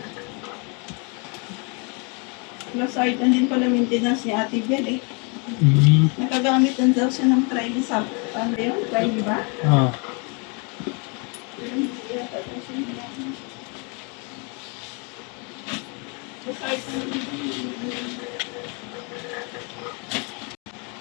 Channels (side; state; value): right; quieter; 34.0 dB